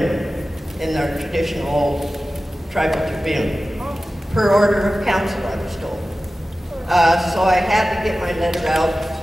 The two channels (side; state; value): both; normal; correlation 0.95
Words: in their traditional old Tribal Tribune. Per order of council, I was told. So I had to get my letter out.